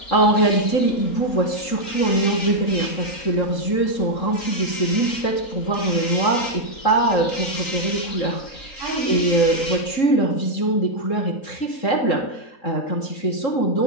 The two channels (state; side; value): late; right; 3.9 ms